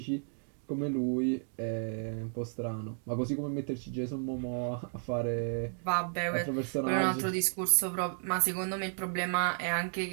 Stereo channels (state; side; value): silent; left; 56 dB below the other